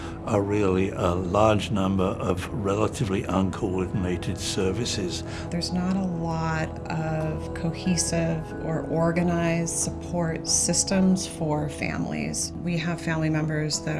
are really a large number of relatively uncoordinated services. There's not a lot of cohesive or organized support systems for families. We have family members that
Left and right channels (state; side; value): identical; both; correlation 1.00